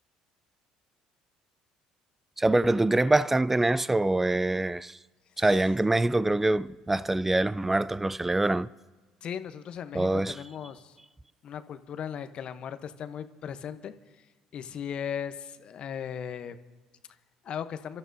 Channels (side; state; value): both; normal; correlation 0.95